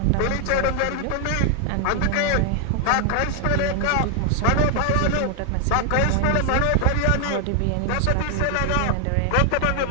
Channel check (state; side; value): different; both; correlation 0.00